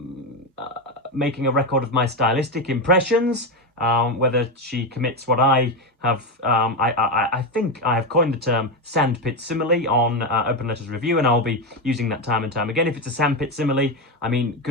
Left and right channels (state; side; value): normal; both; correlation 0.12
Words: making a record of my stylistic impressions. Whether she commits what I have, I think I have coined the term sandpit simile on Open Letters Review, and I'll be using that time and time again. If it's a sandpit simile, I mean,